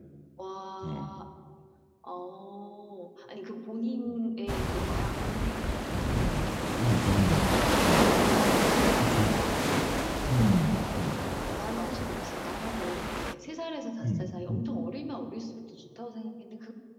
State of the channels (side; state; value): both; identical; correlation 1.00